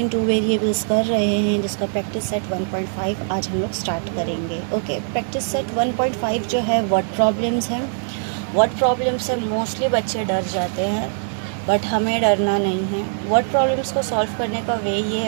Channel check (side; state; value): left; silent; digital silence